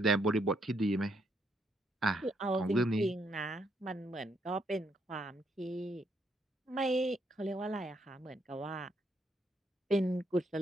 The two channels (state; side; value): normal; both; correlation 0.74